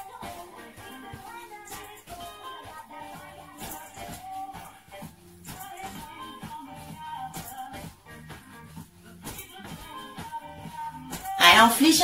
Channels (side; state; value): both; identical; correlation 1.00